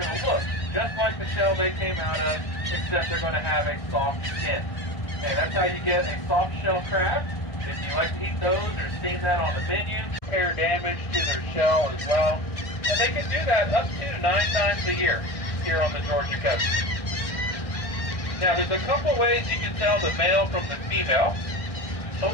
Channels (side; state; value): right; late; 1.6 ms